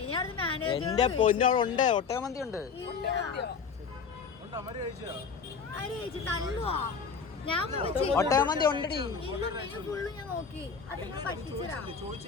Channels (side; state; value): right; quieter; 5.8 dB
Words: എന്റെ പൊന്നോളുണ്ട്, ഒട്ടകമന്തി ഉണ്ട്. ഒട്ടകമന്തി ഉണ്ടടി.